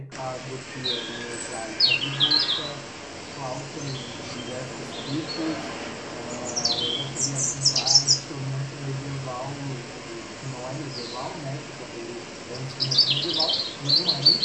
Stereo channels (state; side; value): identical; both; correlation 1.00